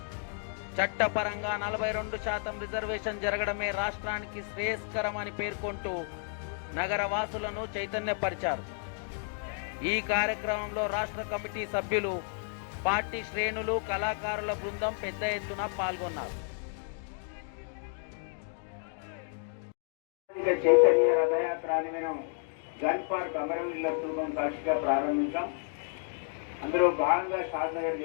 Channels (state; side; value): silent; right; 57 dB below the other